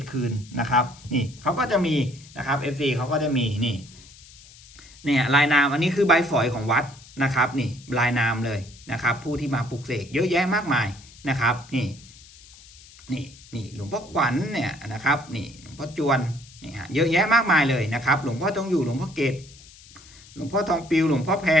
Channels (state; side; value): noise; left; hiss, 22 dB below the sound